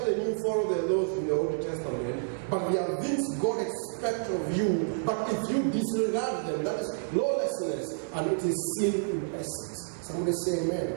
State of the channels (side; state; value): left; silent; 58 dB below the other